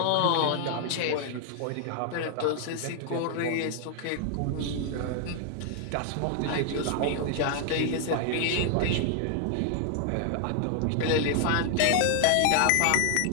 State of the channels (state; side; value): different; both; correlation 0.00